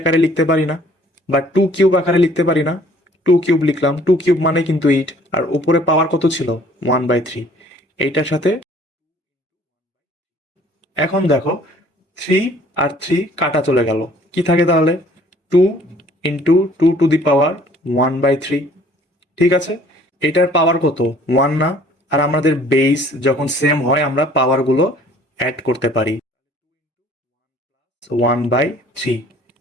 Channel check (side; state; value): both; normal; correlation 0.56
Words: লিখতে পারি না, বা 2 কিউব আকারে লিখতে পারি না। 2 কিউব লিখলাম, 2 কিউব মানে কিন্তু 8, আর উপরে পাওয়ার কত ছিল 1/3, এইটার সাথে। এখন দেখো 3 আর 3 কাটা চলে গেল, কি থাকে তাহলে 2 ইন্টু 2⁻1/3। ঠিক আছে, এটার পাওয়ার কত 1 না? আর আমাদের বেস যখন সেম হয় আমরা পাওয়ারগুলো অ্যাড করতে পারি, 1/3।